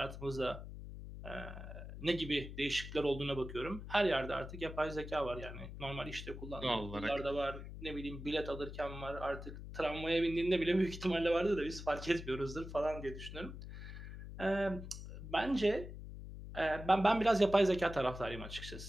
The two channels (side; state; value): left; noise; hum, 10 dB below the sound